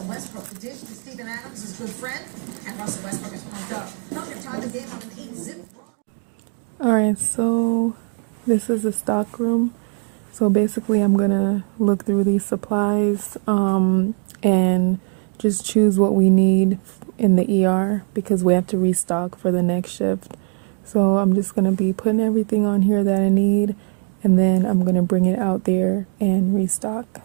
Alright, so this is the stock room. So basically I'm gonna look through these supplies and just choose what we need in the ER because we have to restock for the next shift. So I'm just gonna be putting everything on here that I need, and then I'm gonna bring it out there and restock.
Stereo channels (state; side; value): quieter; left; 38.9 dB